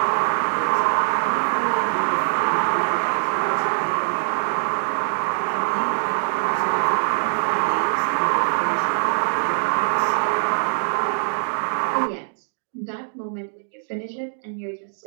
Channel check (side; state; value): left; silent; digital silence